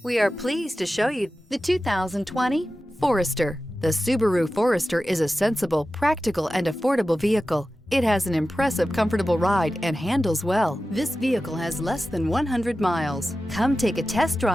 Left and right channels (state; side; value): normal; both; correlation 0.94